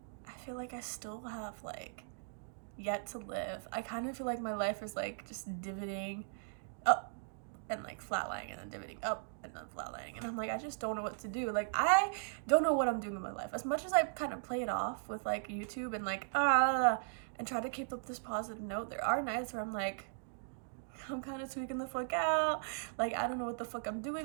I feel like I still have like yet to live. I kind of feel like my life is like just divoting up and like flatlining, and then divoting up and then flatlining, and I'm like, I just don't know what to do. Like, I don't know what I'm doing in my life. As much as I kind of play it off with like YouTube and like and try to keep up this positive note, there are nights where I'm like, I'm kind of tweaking the fuck out. Like, I don't know what the fuck I'm doing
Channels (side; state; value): left; silent; digital silence